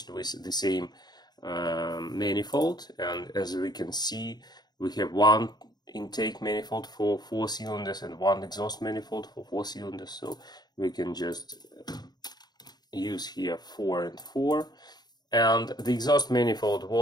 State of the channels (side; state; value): right; late; 0.20 ms